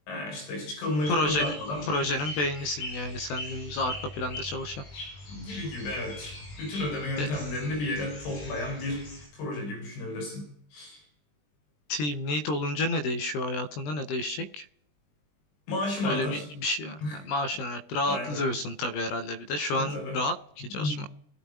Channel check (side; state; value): right; late; 20 ms